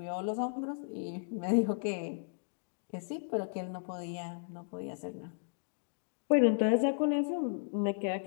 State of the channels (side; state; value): right; silent; digital silence